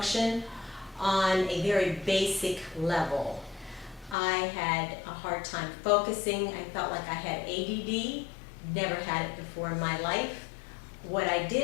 on a very basic level. I had a hard time focusing. I felt like I had ADD, never had it before in my life. What I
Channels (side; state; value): right; drops out; at 4.2 s